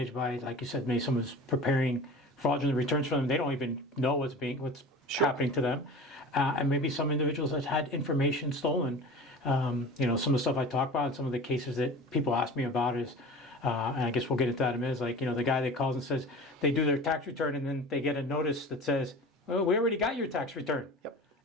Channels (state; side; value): normal; both; correlation 0.37